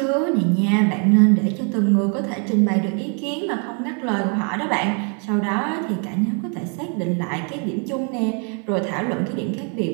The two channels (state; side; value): quieter; left; 39.2 dB